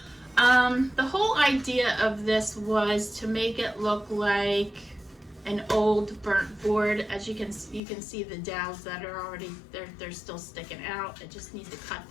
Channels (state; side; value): drops out; right; at 7.8 s